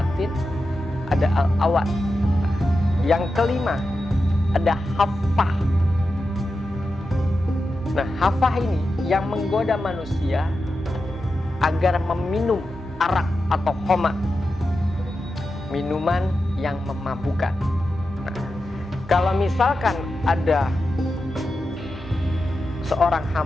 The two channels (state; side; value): normal; both; correlation 0.90